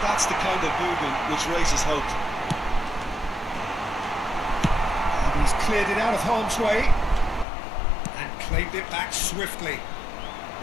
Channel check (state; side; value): drops out; right; at 7.5 s